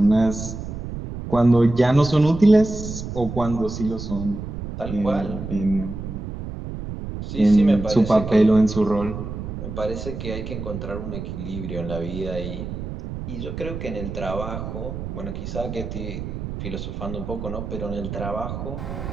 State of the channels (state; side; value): noise; right; rumble, 7 dB below the sound